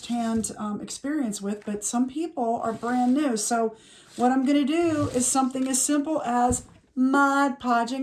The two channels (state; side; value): identical; both; correlation 1.00